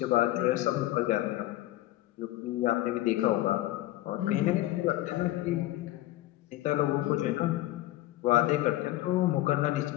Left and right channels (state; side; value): quieter; right; 16.1 dB